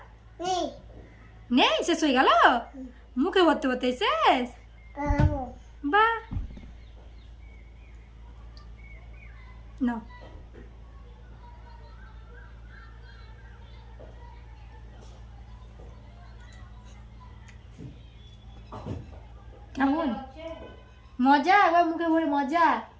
নেই নেই শেষ হয়ে গেল মুখে ভরতে ভরতে শেষ খাবো বা না কেমন মজা আবার মুখে ভরে মজা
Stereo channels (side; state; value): both; identical; correlation 1.00